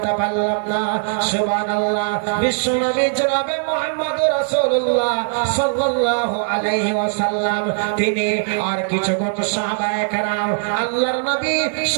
পারলে পারলাম না। সুবহানাল্লাহ। বিশ্বনবী জনাবে মুহাম্মদ রাসূলুল্লাহ সাল্লাল্লাহু আলাইহি ওয়াসাল্লাম তিনি আর কিছুক্ষণ সাহাবায়ে কেরাম আল্লাহর নবী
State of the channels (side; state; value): left; silent; digital silence